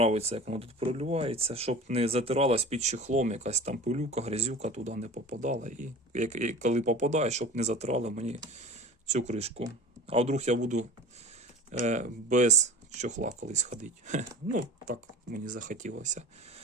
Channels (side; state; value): both; normal; correlation 0.36